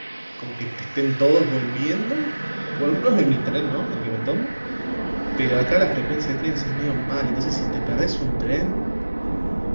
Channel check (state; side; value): inverted; both; correlation -1.00